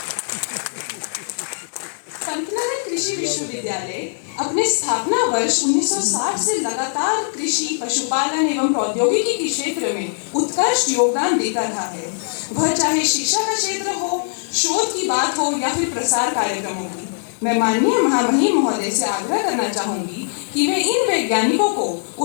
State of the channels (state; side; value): silent; right; digital silence